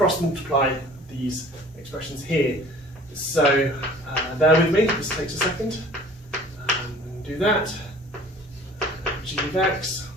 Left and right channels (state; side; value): normal; both; correlation 0.49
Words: multiply these expressions here. So bear with me, this takes a second. Do that. G of x,